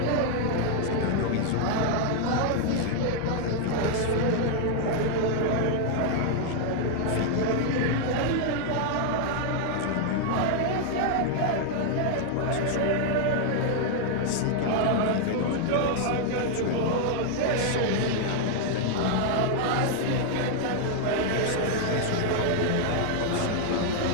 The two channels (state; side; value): different; both; correlation 0.00